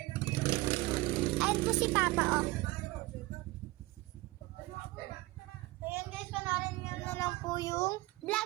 Ayan po si Papa, oh. Ayan guys, panoorin nyo na lang po yung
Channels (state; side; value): quieter; left; 20.3 dB